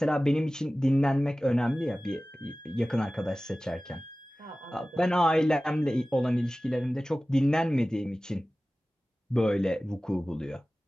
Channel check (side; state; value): both; normal; correlation 0.97